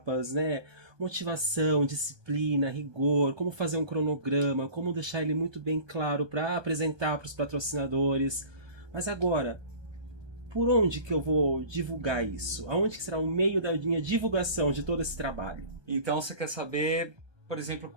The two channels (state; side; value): late; left; 1.2 ms